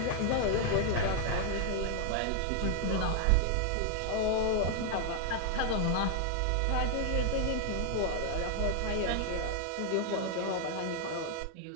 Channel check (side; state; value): both; different; correlation 0.00